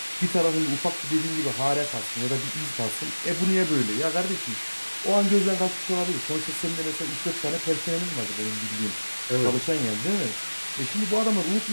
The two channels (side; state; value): both; inverted; correlation -1.00